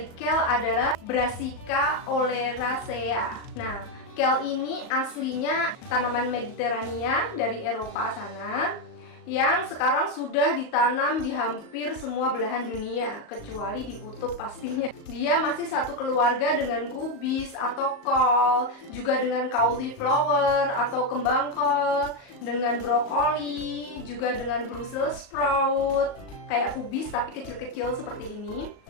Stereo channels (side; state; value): right; late; 38 ms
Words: kale adalah Brassica oleracea. Nah, kale ini aslinya tanaman Mediterania dari Eropa sana, yang sekarang sudah ditanam di hampir semua belahan dunia, kecuali di kutub pastinya. Dia masih satu keluarga dengan kubis atau kol, juga dengan cauliflower atau kembang kol, dengan brokoli, juga dengan Brussels sprout, kayak kubis tapi kecil-kecil seperti ini.